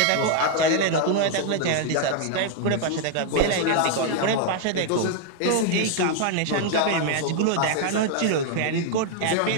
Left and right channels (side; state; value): both; different; correlation 0.00